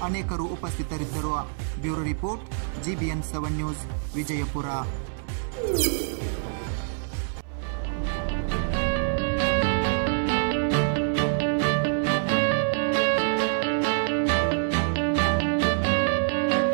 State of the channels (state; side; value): silent; left; 61 dB below the other